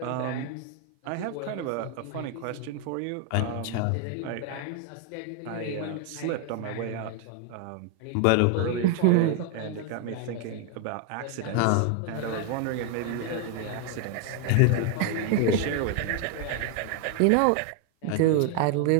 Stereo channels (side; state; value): both; different; correlation 0.00